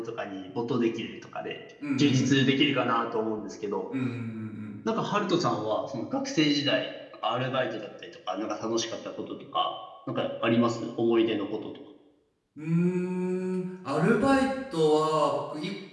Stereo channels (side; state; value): both; identical; correlation 1.00